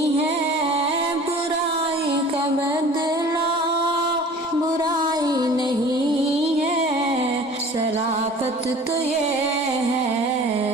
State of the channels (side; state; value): both; normal; correlation 0.45